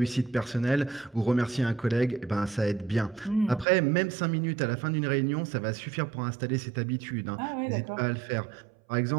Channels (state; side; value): drops out; left; at 3.7 s